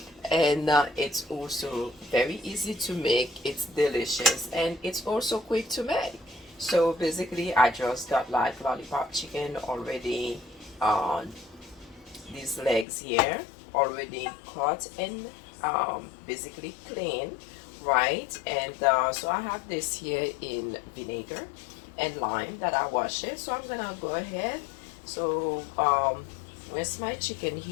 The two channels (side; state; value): right; drops out; at 12.9 s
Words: and it's also very easy to make. It's delicious and it's also quick to make. So basically I just got like lollipop chicken already, on these legs here, already cut and basically clean, right? And so I have this here in vinegar and lime that I wash it. So I'm gonna go ahead. So where's my chicken